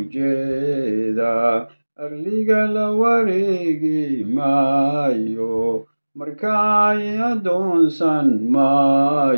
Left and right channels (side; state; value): both; inverted; correlation -1.00